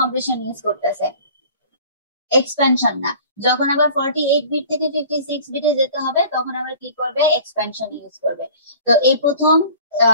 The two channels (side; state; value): both; inverted; correlation -0.46